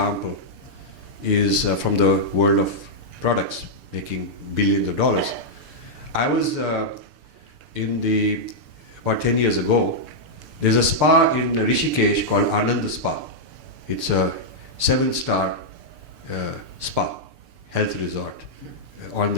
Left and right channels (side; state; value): left; late; 6.8 ms